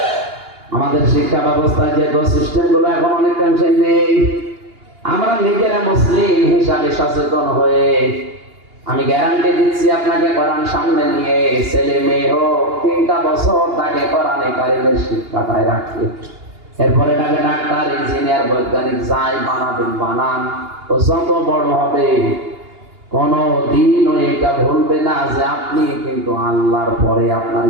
আমাদের শিক্ষা ব্যবস্থায় যে সিস্টেম গুলো এখন অনেকাংশে নেই, আমরা নিজেরা মুসলিম হিসাবে সচেতন হয়ে, আমি গ্যারান্টি দিচ্ছি আপনাকে কোরআন সামনে নিয়ে ছেলে মেয়ে হোক 3টা বছর তাকে কোরআনে কারিমের শিক্ষাটায় রাখে, এরপরে তাকে ডাক্তার, ইঞ্জিনিয়ার, বৈজ্ঞানিক যাই বানাবেন বানান, ও যত বড় হবে কোনো দিন এটা ভুলবে না যে আপনি কিন্তু আল্লাহর পরে আপনার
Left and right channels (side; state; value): left; late; 2.8 ms